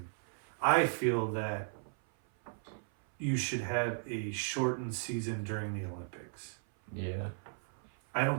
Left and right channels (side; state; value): left; silent; 54 dB below the other